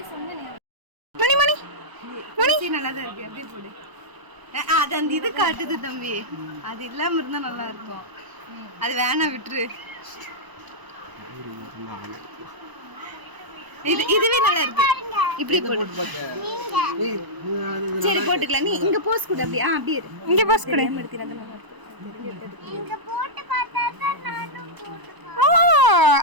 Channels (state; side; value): late; left; 1.0 ms